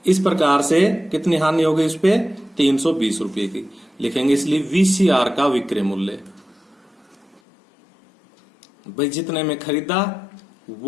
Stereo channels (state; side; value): drops out; right; at 7.4 s